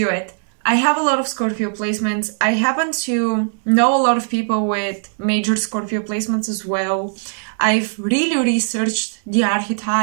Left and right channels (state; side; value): silent; left; digital silence